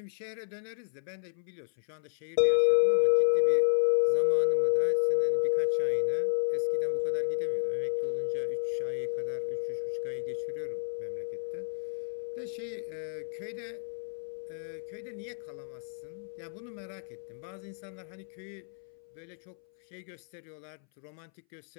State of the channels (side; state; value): right; silent; 57 dB below the other